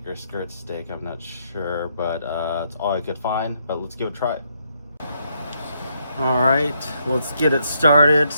or skirt steak, I'm not sure, but it's all I could find. But let's give it a try. All right, let's get it started.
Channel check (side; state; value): both; inverted; correlation -0.75